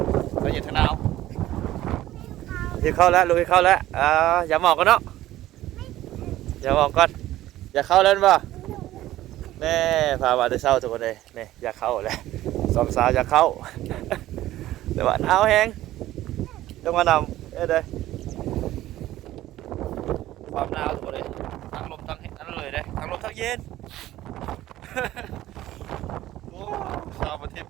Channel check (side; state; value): left; quieter; 14.8 dB